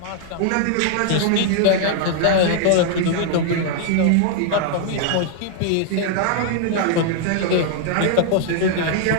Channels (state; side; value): different; both; correlation -0.01